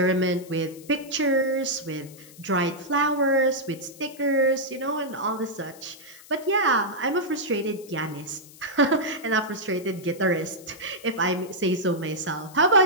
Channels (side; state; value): left; noise; hiss, 21 dB below the sound